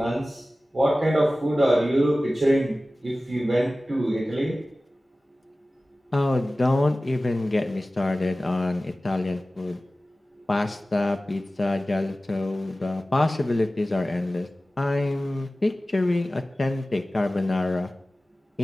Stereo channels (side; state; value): both; normal; correlation 0.96